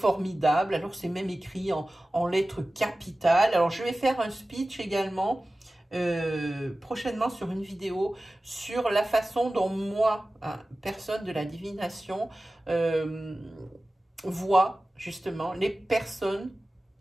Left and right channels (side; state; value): both; normal; correlation 0.96